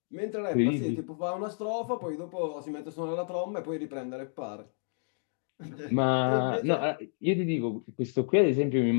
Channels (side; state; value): right; silent; digital silence